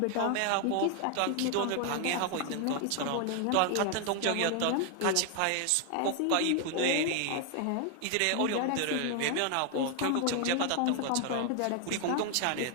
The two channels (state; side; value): different; both; correlation 0.00